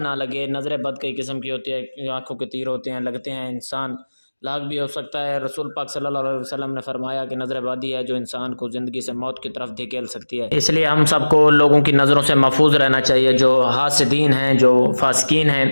نہ لگے، نظر بد کئی قسم کی ہوتی ہے، آنکھوں کے تیر ہوتے ہیں، لگتے ہیں، انسان لاغ بھی ہو سکتا ہے۔ رسول پاک صلی اللہ علیہ وسلم نے فرمایا کہ نظر بدی ہے جو انسان کو زندگی سے موت کی طرف دھکیل سکتی ہے۔ اس لیے ہم سب کو لوگوں کی نظروں سے محفوظ رہنا چاہیے، جو حاسدین ہیں، جو فاسقین ہیں،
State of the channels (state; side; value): inverted; both; correlation -1.00